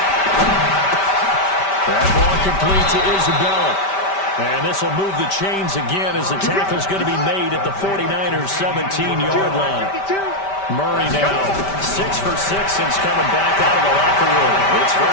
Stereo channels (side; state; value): right; late; 5.1 ms